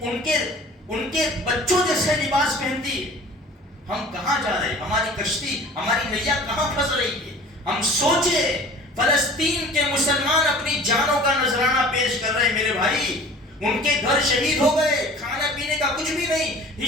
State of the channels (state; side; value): normal; both; correlation 0.45